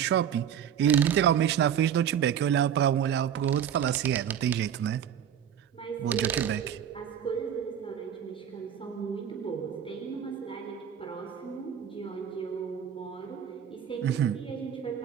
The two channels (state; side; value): quieter; left; 9.0 dB